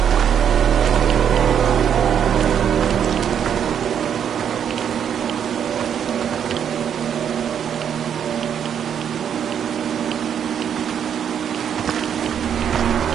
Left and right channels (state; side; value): quieter; left; 8.5 dB